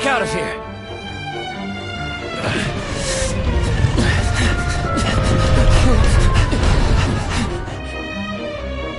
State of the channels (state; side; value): identical; both; correlation 1.00